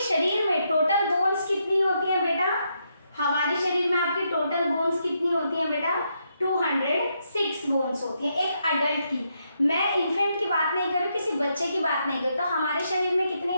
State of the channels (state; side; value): inverted; both; correlation -0.79